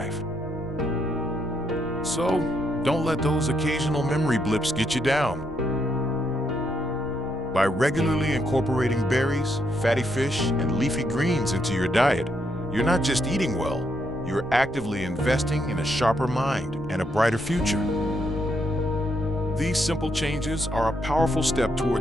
So, don't let those occasional memory blips get you down. By regularly incorporating berries, fatty fish, and leafy greens into your diet, you're not just eating well, you're actively investing in a sharper mind and a brighter future. These simple changes are a powerful step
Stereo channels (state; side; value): noise; left; rumble, 17 dB below the sound